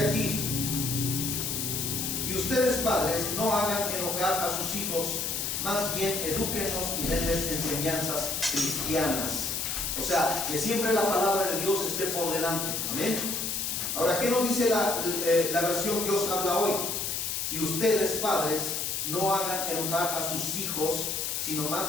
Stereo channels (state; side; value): noise; left; hiss, 1 dB below the sound